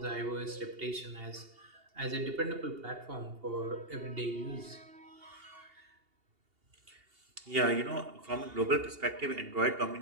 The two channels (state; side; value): late; left; 2.8 ms